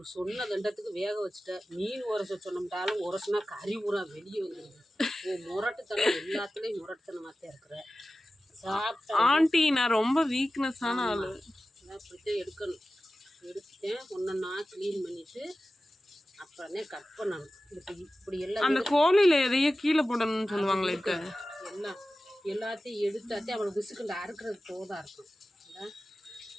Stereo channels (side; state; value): both; normal; correlation 0.95